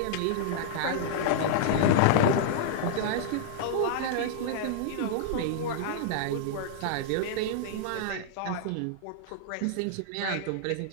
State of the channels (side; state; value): both; different; correlation -0.01